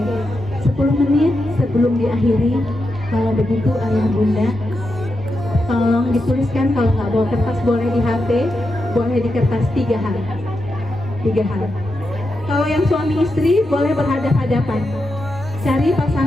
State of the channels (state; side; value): normal; both; correlation 0.87